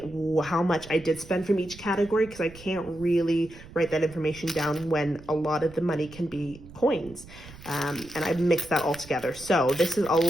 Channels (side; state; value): right; noise; rumble, 18 dB below the sound